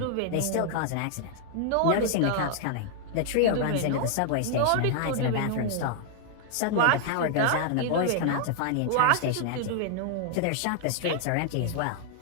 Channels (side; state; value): both; different; correlation 0.00